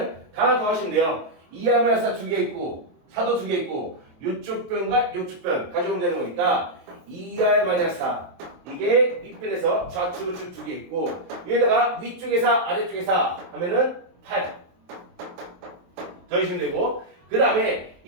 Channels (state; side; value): late; left; 23 ms